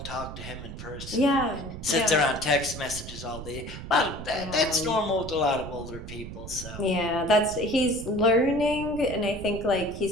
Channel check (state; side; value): noise; right; rumble, 11 dB below the sound